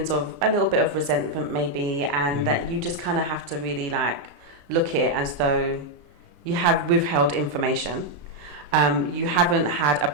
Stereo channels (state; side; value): late; left; 34 ms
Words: of a little bit of resentment maybe, and that you just kind of have to really like look at it as though you have withheld information. You haven't had a